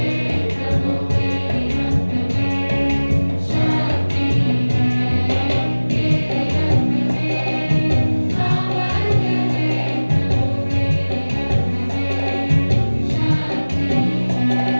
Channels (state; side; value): inverted; both; correlation -1.00